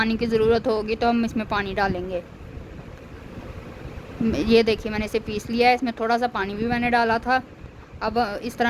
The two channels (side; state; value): both; identical; correlation 1.00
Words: की ज़रूरत होगी तो हम इसमें पानी डालेंगे। ये देखिए मैंने इसे पीस लिया है, इसमें थोड़ा सा पानी भी मैंने डाला था। अब इस